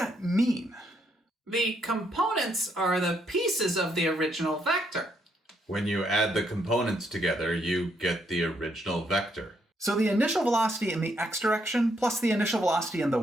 mean? The components are the pieces of the original vector. When you add the components together, you get the original vector. So the initial velocity in the x direction plus the initial velocity in the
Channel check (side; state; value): both; normal; correlation 0.74